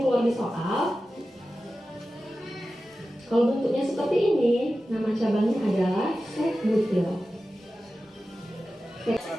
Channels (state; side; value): normal; both; correlation 0.94